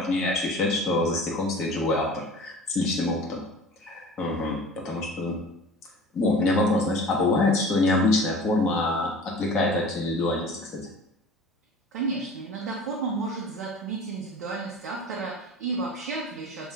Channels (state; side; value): normal; both; correlation 0.41